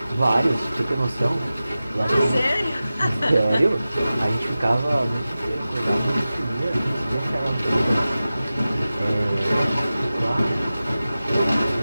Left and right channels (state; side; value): inverted; both; correlation -0.95